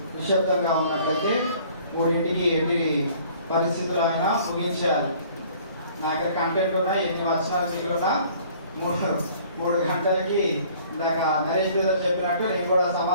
నిశ్శబ్దంగా ఉన్నట్లయితే 3ంటికి ఎన్ని పరిస్థితులు అయినా ముగించేయాలి. నా దగ్గర కంటెంట్ ఉన్నాయి, ఎన్ని వచనాలు మిగిలినా 3 గంటలకి ఇందాక నరేష్ బ్రదర్ చెప్పినట్టు నేను కూడా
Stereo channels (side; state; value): both; inverted; correlation -0.54